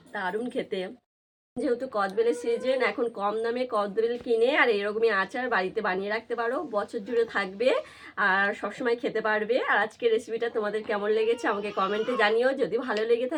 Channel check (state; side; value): identical; both; correlation 1.00